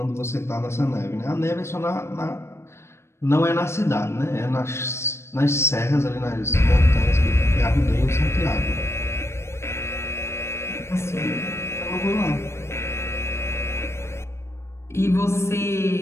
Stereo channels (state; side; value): late; right; 0.13 ms